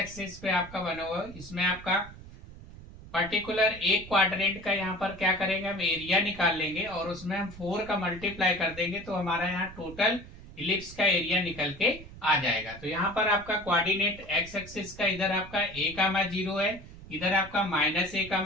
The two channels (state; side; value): noise; right; rumble, 16 dB below the sound